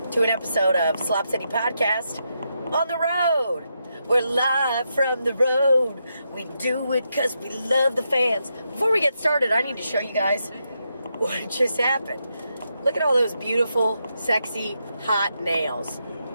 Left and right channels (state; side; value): inverted; both; correlation -0.83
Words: to an episode of Slop City Podcast on the road. We're live from the road. We do it because we love the fans. Before we get started, I need to show you guys what just happened. Look at all those beautiful, sexy, hot nails.